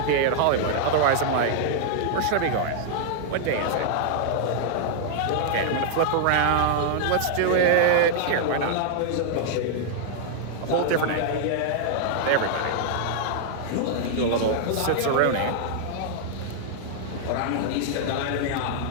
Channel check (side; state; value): both; different; correlation -0.01